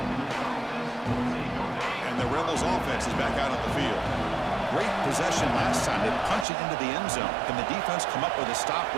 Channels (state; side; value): drops out; left; at 6.5 s